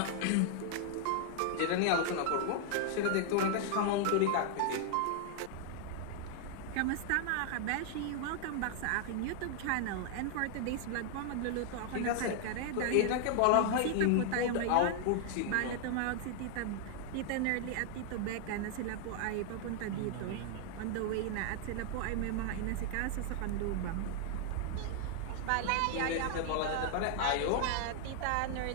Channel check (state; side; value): different; both; correlation 0.00